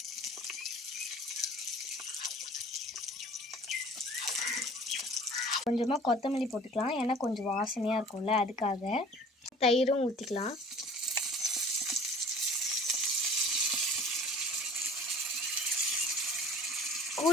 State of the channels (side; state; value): both; normal; correlation 0.46